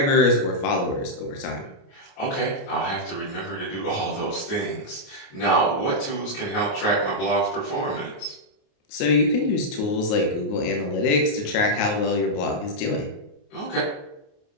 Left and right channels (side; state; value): right; late; 28 ms